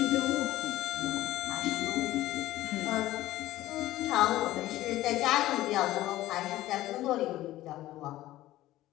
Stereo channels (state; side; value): quieter; right; 15.5 dB